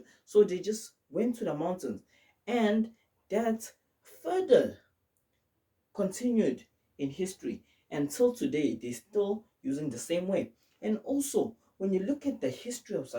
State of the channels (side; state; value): both; identical; correlation 1.00